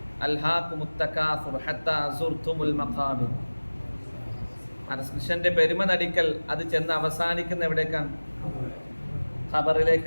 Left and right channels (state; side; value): inverted; both; correlation -1.00